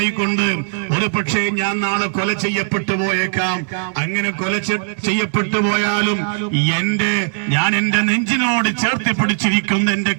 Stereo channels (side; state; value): left; silent; digital silence